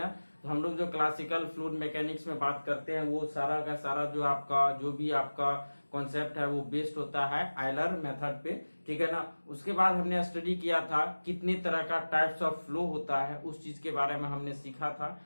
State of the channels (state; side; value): inverted; both; correlation -1.00